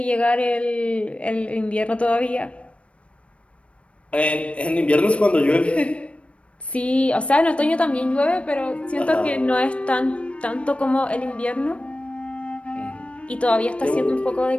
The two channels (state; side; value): late; right; 0.061 ms